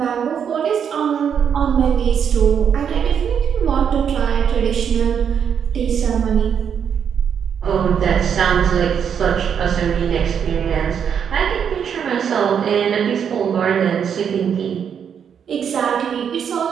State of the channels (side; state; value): left; quieter; 7.8 dB